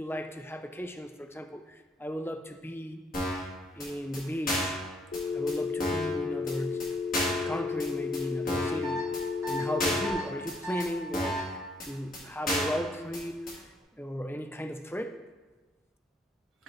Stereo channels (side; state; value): both; normal; correlation 0.70